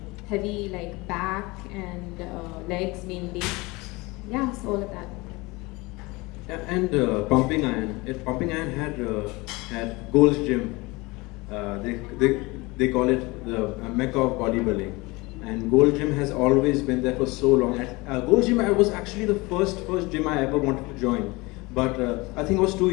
heavy like back and legs mainly. Yeah, so all of that. Yeah, and Pumping Iron. Pumping Iron had Gold's Gym. They call it the Mecca of bodybuilding. And Gold Gym has always been there for so long. At Gold Gym, I was actually the first gym I ever wanted to join. But I think I was too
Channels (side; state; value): right; quieter; 23.7 dB